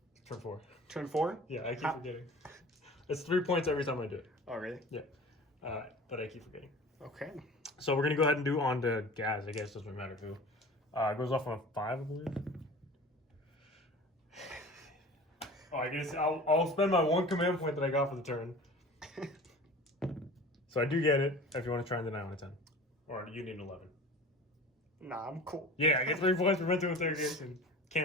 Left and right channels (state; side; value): normal; both; correlation 0.39